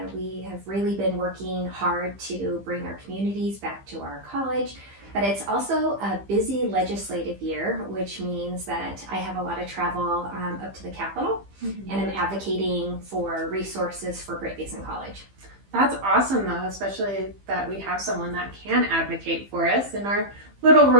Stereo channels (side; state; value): left; late; 15 ms